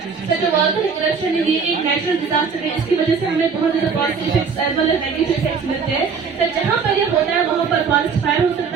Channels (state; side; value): quieter; left; 5.7 dB